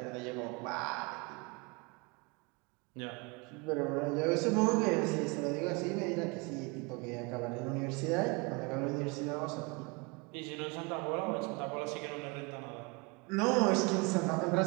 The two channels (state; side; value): quieter; left; 28.7 dB